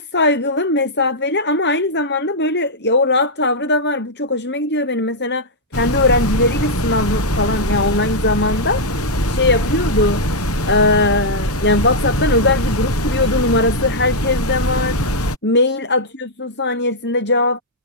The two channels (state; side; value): normal; both; correlation -0.06